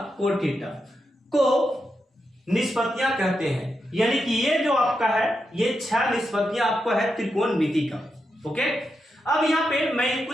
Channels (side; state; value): both; normal; correlation 0.85